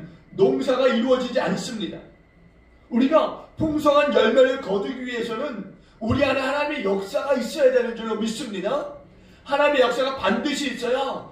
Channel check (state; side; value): identical; both; correlation 1.00